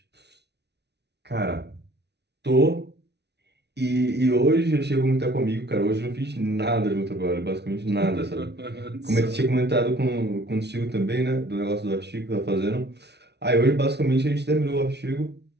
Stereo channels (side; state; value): left; late; 0.49 ms